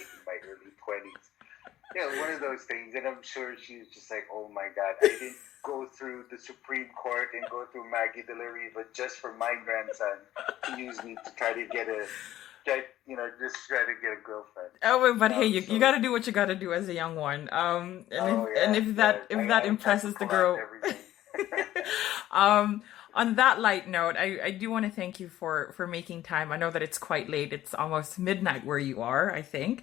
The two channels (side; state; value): right; quieter; 13.5 dB